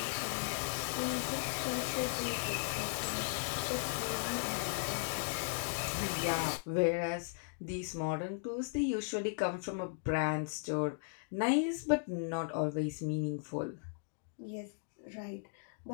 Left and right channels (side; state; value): right; silent; digital silence